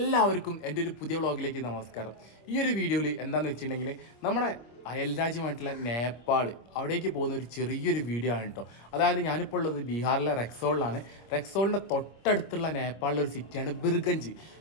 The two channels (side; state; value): right; late; 25 ms